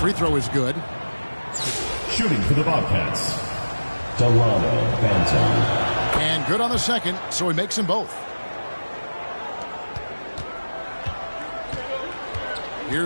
throw is good. Shooting for the Bobcats, Delano Banton. And good on the second, so he makes them both.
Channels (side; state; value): both; inverted; correlation -1.00